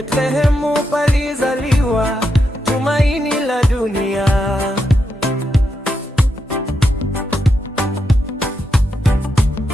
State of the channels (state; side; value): normal; both; correlation 0.84